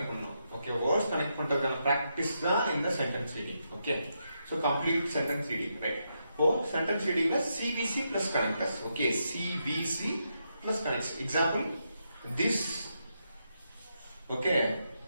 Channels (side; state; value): both; inverted; correlation -0.82